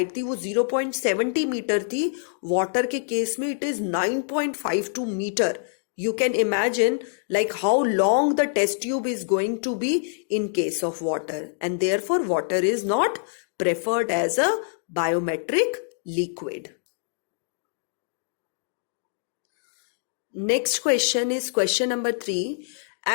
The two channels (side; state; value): right; silent; digital silence